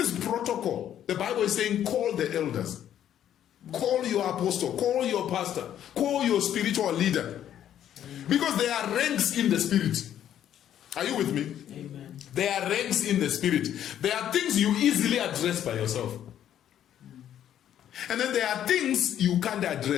protocol. The Bible is saying, call the elders. Call your apostle. Call your pastor. Call your spiritual leader. Because there are ranks in the spirit. Are you with me? Amen. There are ranks in the spirit. There are things you easily address by yourself. And then there are things you can't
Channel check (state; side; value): quieter; right; 10.6 dB